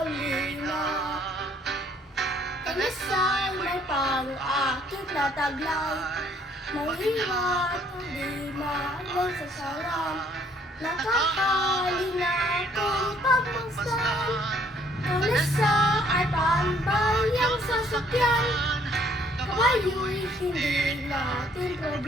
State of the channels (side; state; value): both; normal; correlation 0.63